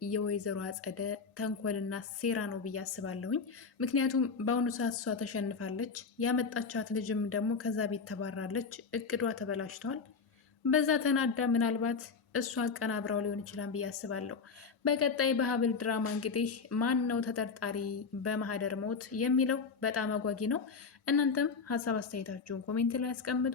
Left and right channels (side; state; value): right; quieter; 5.1 dB